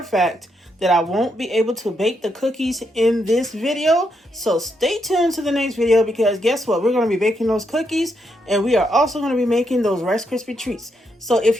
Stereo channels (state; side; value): normal; both; correlation 0.79